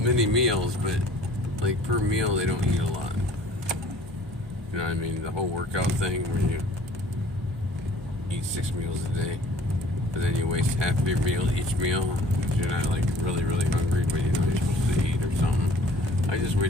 meals, but like per meal they don't eat a lot. You know what I mean? The whole workout thing where you eat 6 meals a day, but then you waste half of your meal each meal because you're not like really, really hungry, but you know you're supposed to eat or something. I just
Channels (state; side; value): normal; both; correlation 0.52